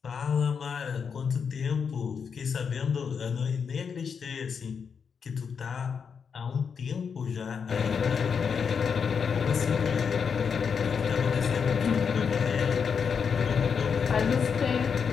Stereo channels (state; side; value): quieter; right; 6.3 dB